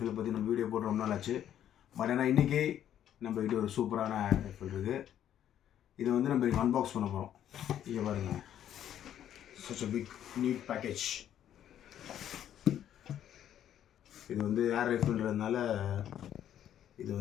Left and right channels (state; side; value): quieter; right; 10.6 dB